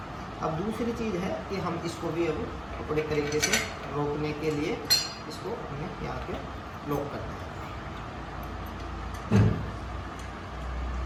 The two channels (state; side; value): identical; both; correlation 1.00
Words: अब दूसरी चीज़ है कि हम इसको भी अब अपने तरीके से रोकने के लिए इसको हमें यहाँ पे लॉक करना है।